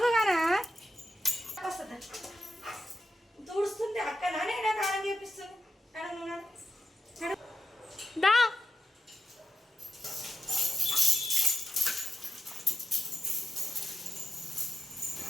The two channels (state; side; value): normal; both; correlation 0.89